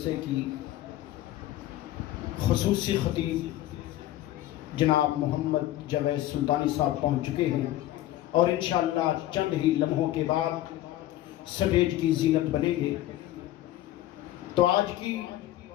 کی خصوصی خطیب جناب محمد جاوید سلطانی صاحب پہنچ چکے ہیں اور انشاءاللہ چند ہی لمحوں کے بعد سٹیج کی زینت بنیں گے۔ تو آج کی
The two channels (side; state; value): right; quieter; 14.6 dB